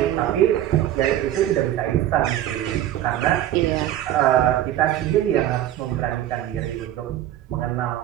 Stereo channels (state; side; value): quieter; left; 12.4 dB